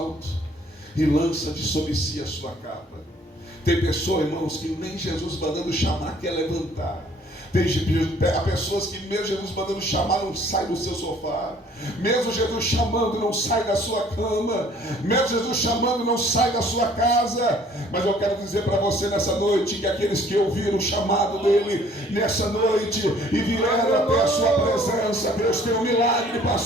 e lança de sobre si a sua capa. Tem pessoas, irmãos, que nem Jesus mandando chamar quer levantar. Há pessoas que mesmo Jesus mandando chamar não sai do seu sofá. Mesmo Jesus chamando não sai da sua cama. Mesmo Jesus chamando não sai da sua casa. Mas eu quero dizer para você nessa noite que aqueles que ouviram o chamado dele nessa noite e vieram até a sua presença, Deus tem um milagre para a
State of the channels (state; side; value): normal; both; correlation 0.57